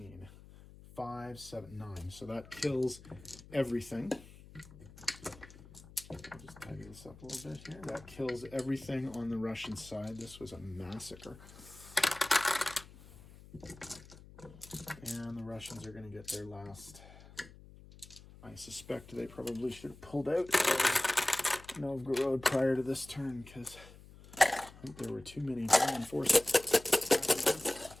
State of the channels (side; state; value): left; noise; hum, 20 dB below the sound